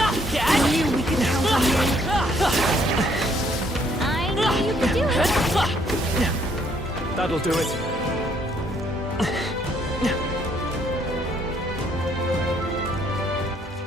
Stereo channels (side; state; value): both; normal; correlation 0.67